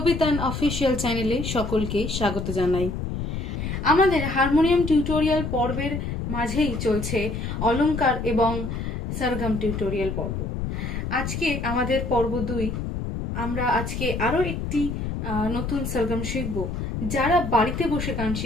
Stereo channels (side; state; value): left; noise; rumble, 4 dB below the sound